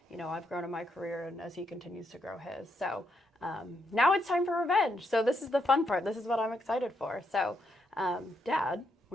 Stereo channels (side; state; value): both; normal; correlation 0.78